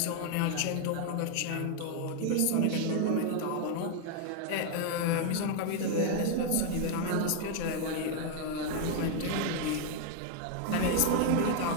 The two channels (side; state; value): both; different; correlation 0.00